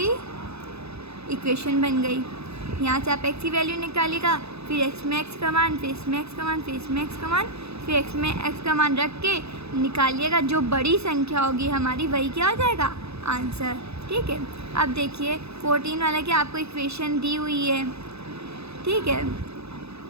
इक्वेशन बन गई। यहाँ से आप x की वैल्यू निकालिएगा, फिर x में x का मान, फिर इसमें x का मान, फिर इसमें x का मान, फिर x में x का मान रख के निकालिएगा। जो बड़ी संख्या होगी हमारी वही क्या हो जाएगा आंसर। ठीक है, अब देखिए 14 वाला की आपको इक्वेशन दी हुई है। ठीक है,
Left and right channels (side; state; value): left; late; 0.79 ms